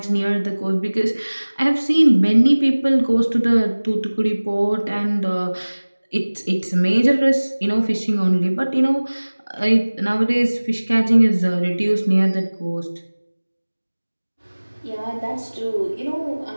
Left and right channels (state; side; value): inverted; both; correlation -1.00